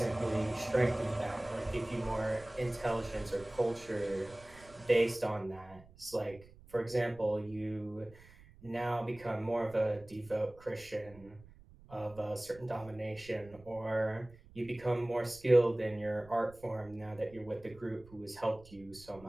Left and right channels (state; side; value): noise; right; rumble, 22 dB below the sound